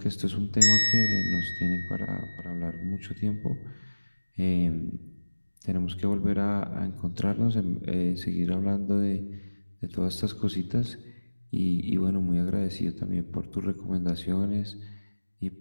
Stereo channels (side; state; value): both; inverted; correlation -1.00